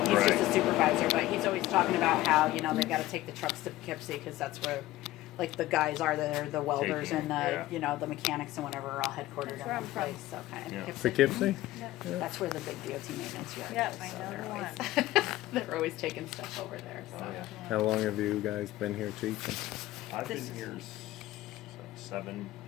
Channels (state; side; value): quieter; right; 16.3 dB